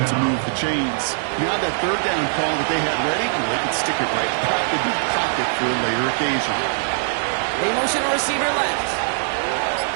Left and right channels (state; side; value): silent; left; digital silence